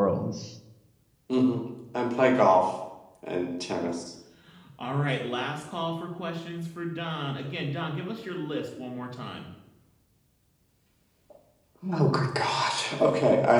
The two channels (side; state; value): both; identical; correlation 1.00